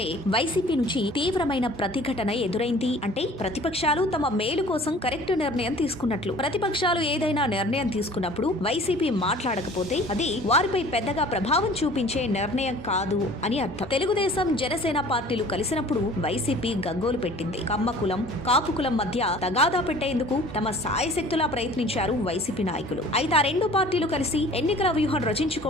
వైసీపీ నుంచి తీవ్రమైన ప్రతిఘటన ఎదురైంది అంటే ప్రతిపక్షాలు తమ మేలు కోసం కరెక్ట్ నిర్ణయం తీసుకున్నట్లు. ప్రతిపక్షాలు ఏదైనా నిర్ణయం తీసుకున్నప్పుడు వైసీపీ మాట్లాడకపోతే అది వారిపై పెద్దగా ప్రభావం చూపించే నిర్ణయం కాదు అని అర్థం. తెలుగుదేశం జనసేన పార్టీలు కలిసినప్పుడు వైసీపీ గగ్గోలు పెట్టింది. కమ్మ కులం కాపు కులం మధ్య తగాదా పెట్టేందుకు తమ సాయశక్తులా ప్రయత్నించారు వైసీపీ నాయకులు. అయితే ఆ రెండు పార్టీలు కలిసి ఎన్నికల వ్యూహం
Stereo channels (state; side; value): normal; both; correlation 0.48